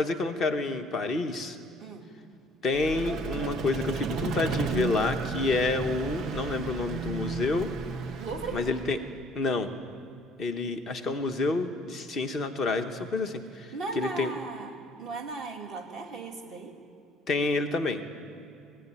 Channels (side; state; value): both; normal; correlation 0.58